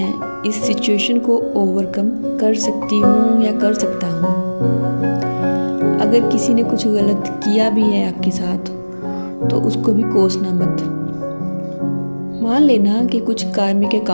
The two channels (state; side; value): inverted; both; correlation -1.00